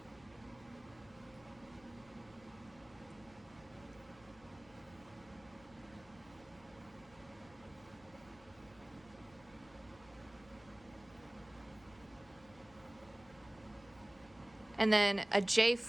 And then a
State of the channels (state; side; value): noise; left; hum, 23 dB below the sound